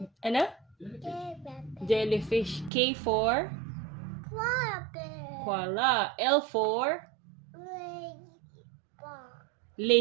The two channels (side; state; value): left; drops out; at 2.7 s